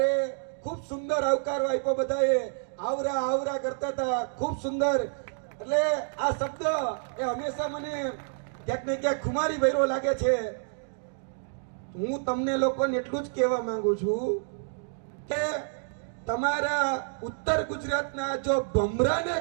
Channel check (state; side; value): silent; left; digital silence